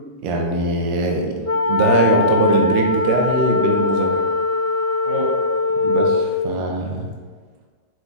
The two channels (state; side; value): late; left; 13 ms